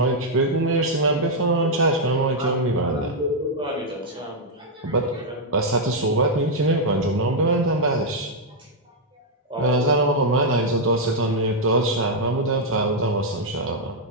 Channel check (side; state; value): both; normal; correlation -0.03